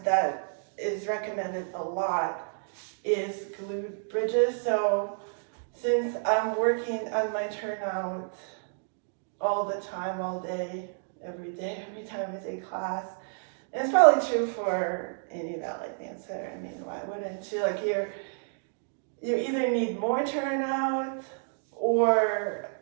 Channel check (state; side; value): silent; left; digital silence